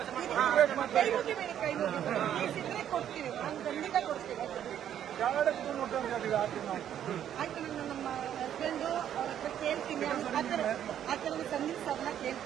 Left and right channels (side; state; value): left; quieter; 10.2 dB